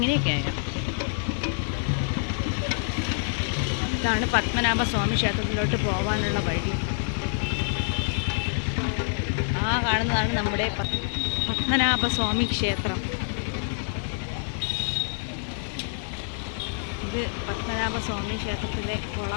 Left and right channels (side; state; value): right; silent; 60 dB below the other